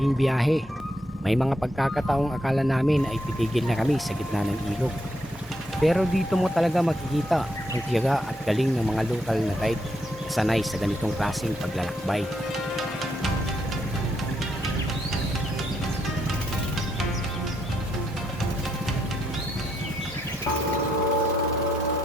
biyahe. May mga pagkakataong akala namin ay titigil na kami sa gitna ng ilog. Pero dito mo talaga makikita ang tiyaga at galing ng mga lokal na guide na sanay sa ganitong klaseng paglalakbay.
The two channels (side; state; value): both; normal; correlation 0.78